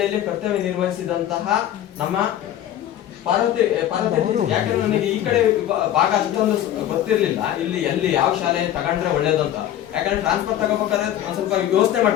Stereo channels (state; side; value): quieter; right; 11.7 dB